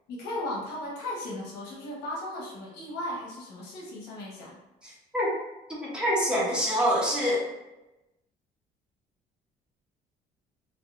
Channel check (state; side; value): normal; both; correlation 0.38